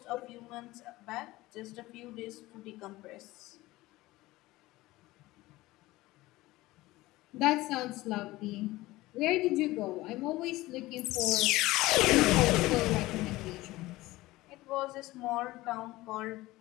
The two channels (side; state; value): right; quieter; 18.6 dB